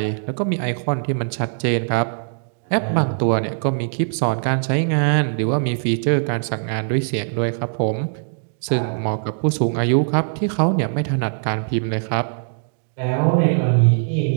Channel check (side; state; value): left; silent; digital silence